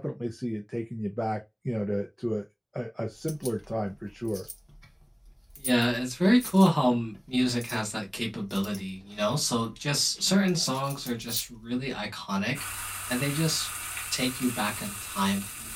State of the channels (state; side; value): identical; both; correlation 1.00